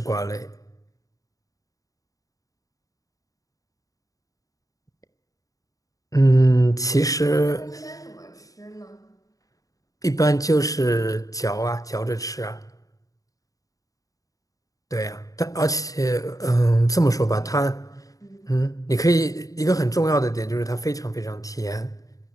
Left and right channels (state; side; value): late; right; 0.17 ms